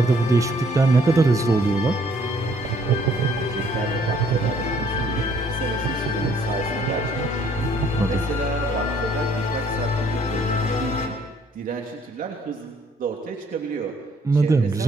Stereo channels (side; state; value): both; normal; correlation 0.63